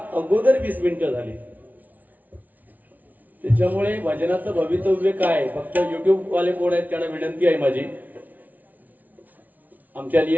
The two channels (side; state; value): left; late; 0.077 ms